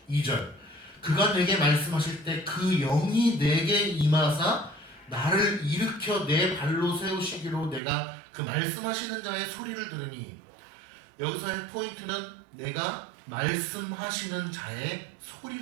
2절, 그가 내게 말씀하실 때 그 영이 내게 임하사 나를 일으켜 내 발로 세우시기로 내가 그 말씀하시는 자의 소리를 들으니 여기서의 포인트는 내가 말씀하시는 자의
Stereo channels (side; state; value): left; drops out; at 7.8 s